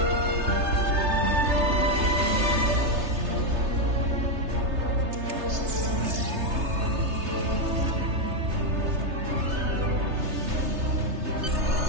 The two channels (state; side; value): late; left; 3.3 ms